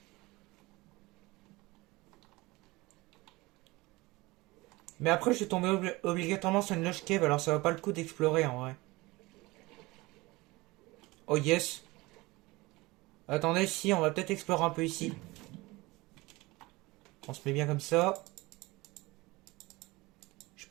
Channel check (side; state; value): left; quieter; 21.7 dB